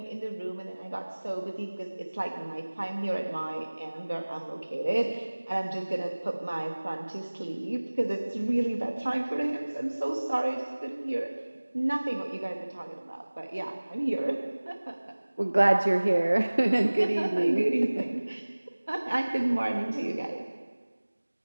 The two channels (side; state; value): both; inverted; correlation -1.00